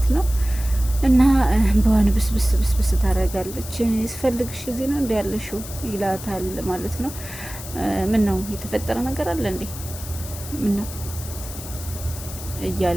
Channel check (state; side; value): noise; left; hiss, 12 dB below the sound